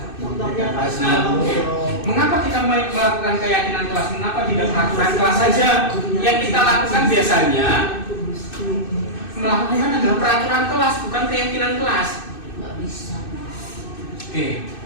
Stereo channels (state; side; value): late; right; 2.6 ms